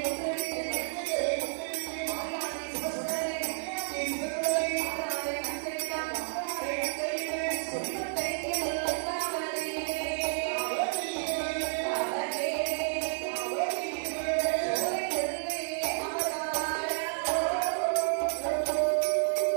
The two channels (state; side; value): silent; left; 57 dB below the other